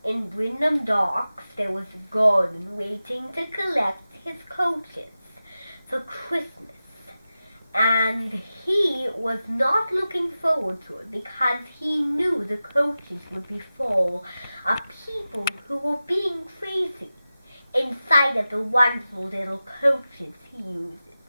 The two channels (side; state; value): both; inverted; correlation -0.94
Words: in Wyndham Docks, there was Gordon waiting to collect his coaches for Christmas. And he was not looking forward to it because he knew the coaches would be full of people who were being crazy inside of the wonderful little coaches he uses.